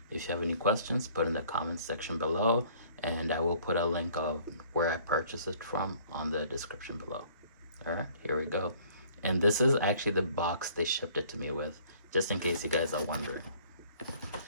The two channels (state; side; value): inverted; both; correlation -0.56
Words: If you have any questions, put in the comments section below, and I will put a link of where I purchased it from on the description below. Alright, here we go. And this is actually the box they shipped it to me with, just in case you guys are wondering.